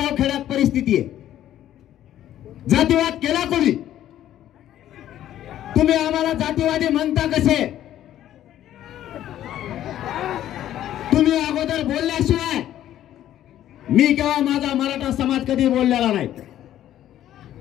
खेड्यात परिस्थिती आहे. जातीवाद केला कोणी? तुम्ही आम्हाला जातीवादी म्हणता कसे? तुम्ही अगोदर बोलल्याशिवाय मी किंवा माझा मराठा समाज कधी बोललेला नाही.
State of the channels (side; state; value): right; quieter; 12.1 dB